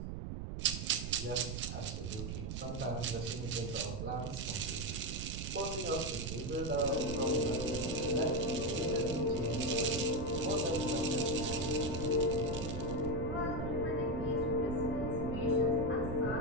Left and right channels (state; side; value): noise; right; rumble, 5 dB below the sound